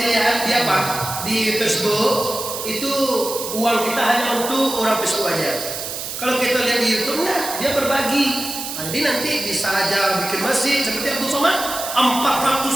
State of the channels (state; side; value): noise; right; hiss, 6 dB below the sound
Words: lihat di apa di Facebook itu uang kita hanya untuk orang Facebook aja. Kalau kita lihat di YouTube nah, dia berbagi. Nah, jadi nanti bisa aja bikin masjid seperti Abdul Somad